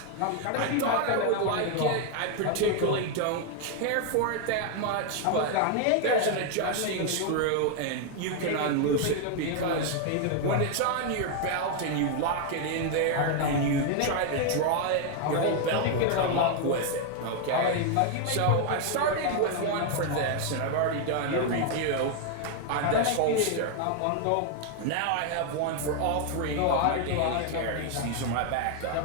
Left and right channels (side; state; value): both; different; correlation 0.00